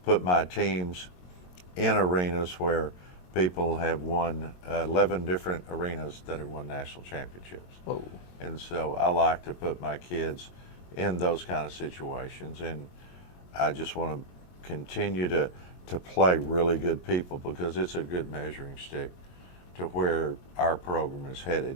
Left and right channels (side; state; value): right; late; 22 ms